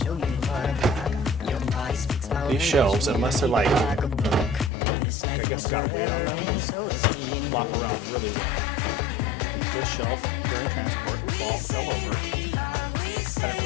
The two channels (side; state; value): right; drops out; at 4.7 s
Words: These shelves, unless they're like, I guess got weight on them, flop around really well. So this shelf, during transport, fell over. I didn't